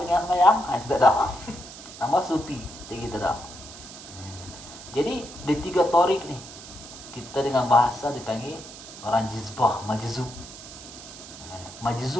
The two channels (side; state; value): right; noise; hiss, 15 dB below the sound